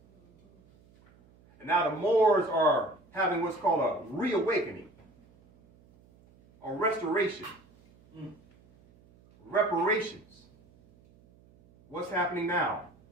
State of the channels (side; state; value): right; noise; hum, 29 dB below the sound